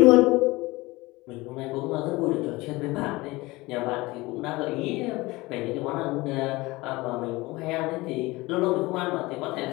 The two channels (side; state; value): right; quieter; 21.5 dB